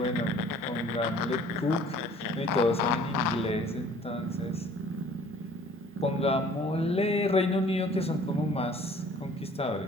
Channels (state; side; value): normal; both; correlation 0.53